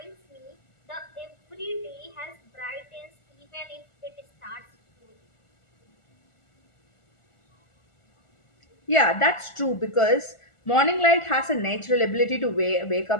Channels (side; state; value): right; late; 1.4 ms